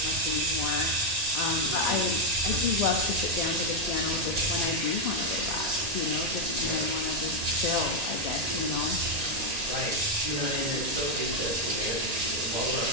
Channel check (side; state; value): left; late; 1.9 ms